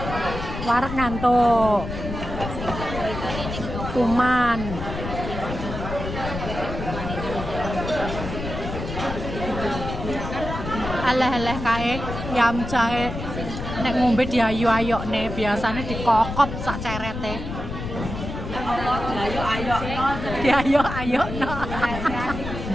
Warak ngantuk. Kuman. Aleh-aleh kae yam jahe nek ngombe diayu-ayok nih, biasanya dikokop sak cerete. Diayu-ayok no.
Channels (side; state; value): left; noise; rumble, 7 dB below the sound